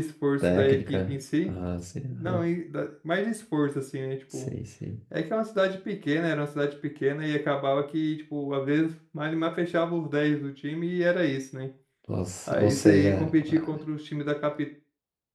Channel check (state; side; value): identical; both; correlation 1.00